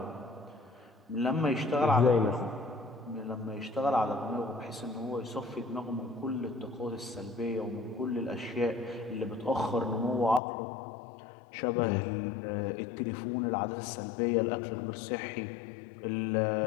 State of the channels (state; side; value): drops out; right; at 10.4 s